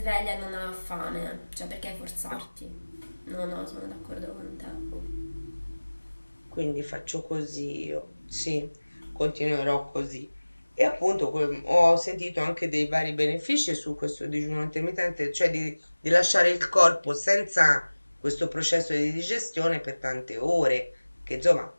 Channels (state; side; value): inverted; both; correlation -1.00